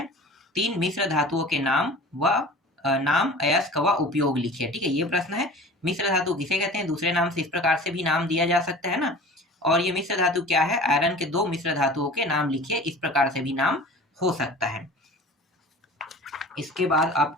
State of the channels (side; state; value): both; normal; correlation 0.40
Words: 3 मिश्र धातुओं के नाम व नाम अयस्क व उपयोग लिखिए, ठीक है। ये प्रश्न है, मिश्र धातु किसे कहते हैं, दूसरे नाम से इस प्रकार से भी नाम दिया जा सकता है ना। और ये मिश्र धातु क्या है, आयरन के 2 मिश्र धातुओं के नाम लिखिए, इस प्रकार से भी नाम हो सकता है। इसके बाद